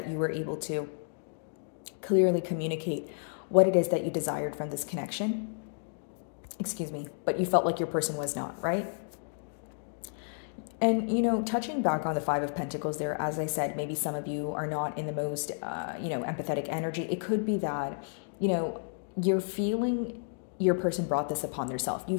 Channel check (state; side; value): silent; right; digital silence